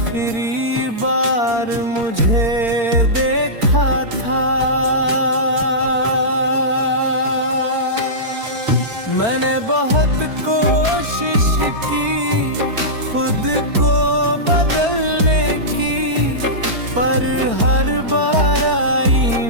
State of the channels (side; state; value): left; late; 4.4 ms